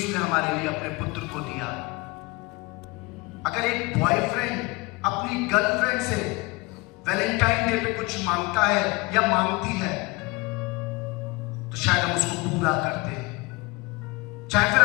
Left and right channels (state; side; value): quieter; right; 24.4 dB